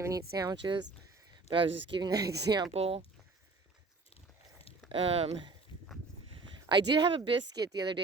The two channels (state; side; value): quieter; left; 3.9 dB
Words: eat sandwiches. But I was just giving that example. I did have a biscuit the other